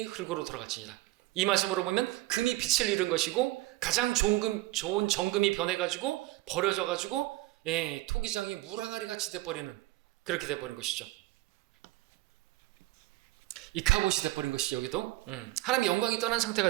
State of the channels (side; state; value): left; quieter; 18.4 dB